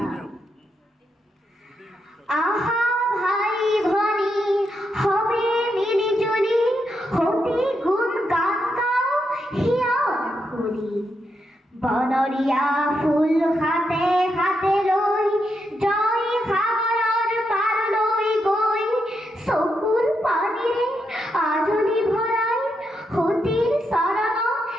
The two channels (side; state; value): both; normal; correlation 0.82